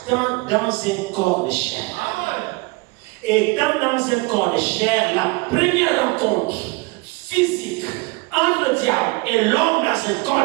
dans un corps de chair. Et dans un corps de chair, la première rencontre physique entre le diable et l'homme dans un corps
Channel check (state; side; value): quieter; left; 25.7 dB